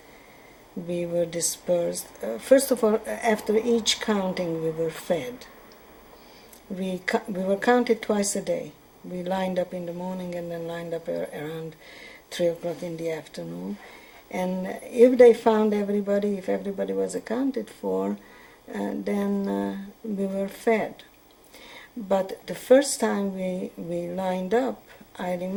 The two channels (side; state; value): both; identical; correlation 1.00